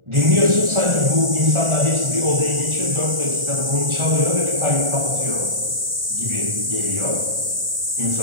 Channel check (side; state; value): left; late; 1.4 ms